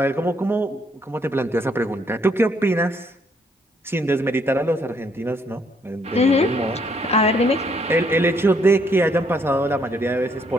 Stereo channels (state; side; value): normal; both; correlation 0.70